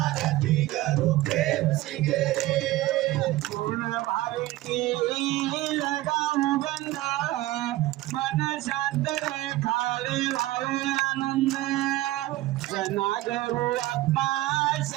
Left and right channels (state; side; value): quieter; left; 17.1 dB